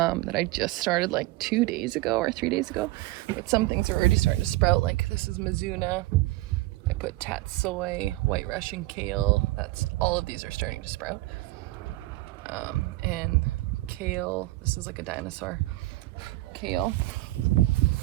I just started like 2 days ago or 3 days ago. But some things are already starting to sprout, like this is Mizuna. I put tatsoi, white Russian kale. All of these are starting to sprout. And kale, this is like a dinosaur kale.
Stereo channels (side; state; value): left; quieter; 19.0 dB